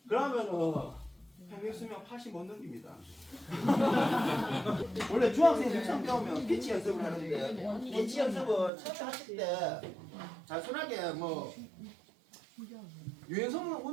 그러면은 평균 수명 80 못 넘깁니다. 원래 중학생들 처음 배우면 피치 연습을 하는데 피치 연습을 처음 하실 때 단순하게 뭐 유연성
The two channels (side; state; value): left; drops out; at 8.7 s